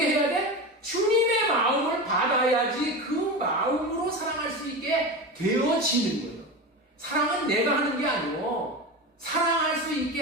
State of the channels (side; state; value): both; normal; correlation 0.24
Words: 해야 돼? 주님의 마음을 받아야지 그 마음으로 사랑할 수 있게 되어지는 거예요. 사랑은 내가 하는 게 아니고 사랑할 수